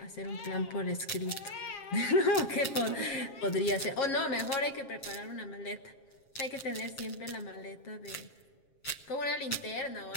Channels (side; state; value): right; late; 7.4 ms